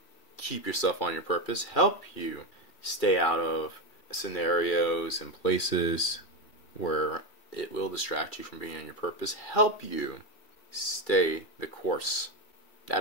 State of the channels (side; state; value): right; late; 2.1 ms